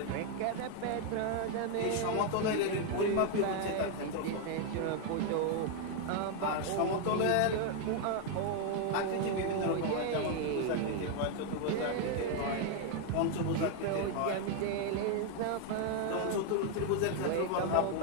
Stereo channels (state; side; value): different; both; correlation 0.00